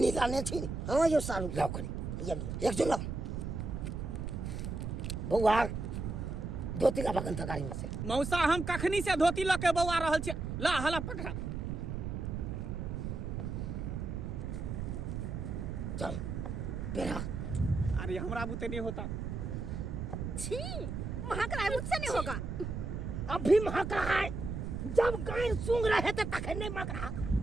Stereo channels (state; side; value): noise; right; rumble, 4 dB below the sound